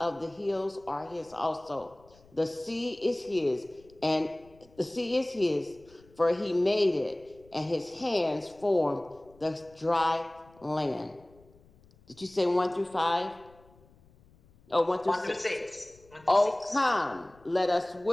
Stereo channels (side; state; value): left; noise; rumble, 28 dB below the sound